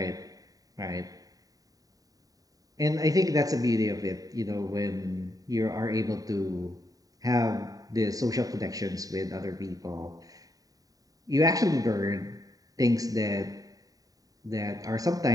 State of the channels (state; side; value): late; left; 0.18 ms